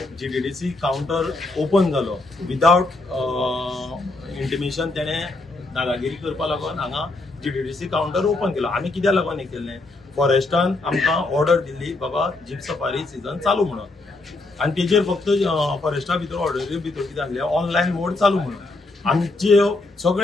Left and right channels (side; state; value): right; quieter; 3.1 dB